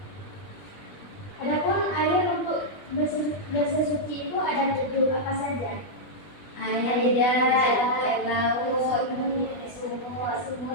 Adapun air untuk bersuci itu ada 7, apa saja? Air hidat, air laut, sumur,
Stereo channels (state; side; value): late; right; 20 ms